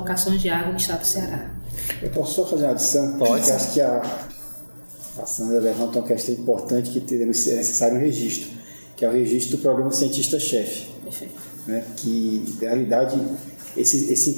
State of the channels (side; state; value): both; inverted; correlation -1.00